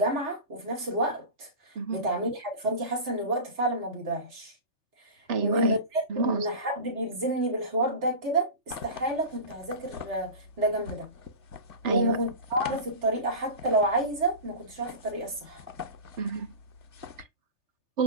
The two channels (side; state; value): left; late; 3.4 ms